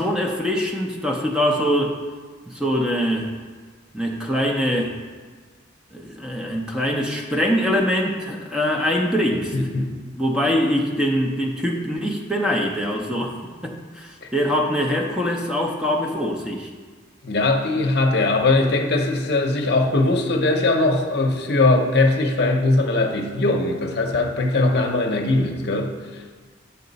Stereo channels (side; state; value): both; normal; correlation 0.49